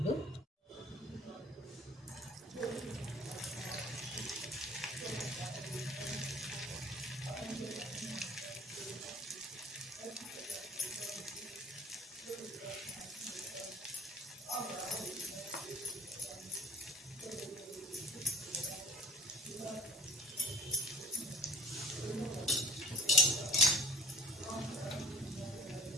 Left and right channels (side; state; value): both; normal; correlation 0.46